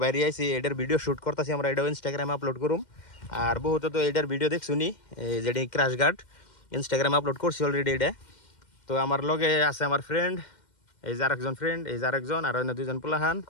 বাইরে আইছি, এটার ভিডিও শ্যুট করতেছি আমরা, এটাও ইনস্টাগ্রামে আপলোড করুম। আর বহুত তো এটার ভিডিও দেখছুনি, এই যেটি ক্রাশ গার্ড ইনস্টাগ্রামে আপলোড করছি অলরেডি এটা। তো আমার লগে আছে আমার ফ্রেন্ড, এই যে আরেকজন ফ্রেন্ড, এই যে আরেকজন, আর অন্য 2জন পোলাহান।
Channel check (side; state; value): right; late; 2.1 ms